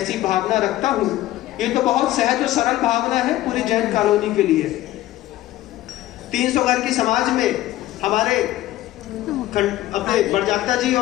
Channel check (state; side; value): quieter; right; 15.2 dB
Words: भावना रखता हूं। ये तो बहुत सहज और सरल भावना है पूरी जैन कॉलोनी के लिए। 300 घर की समाज में हमारे अपने बड़जात्या जी